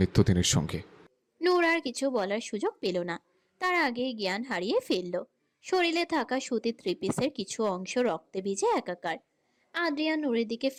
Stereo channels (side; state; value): both; identical; correlation 1.00